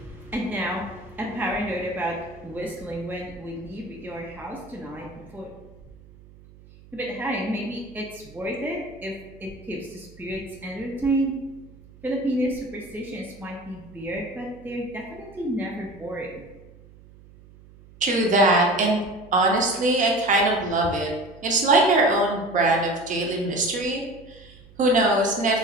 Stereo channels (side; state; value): right; noise; hum, 23 dB below the sound